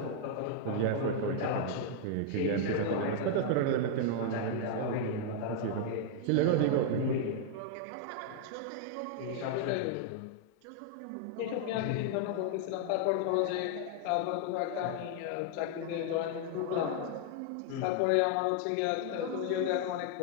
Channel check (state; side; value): different; both; correlation 0.00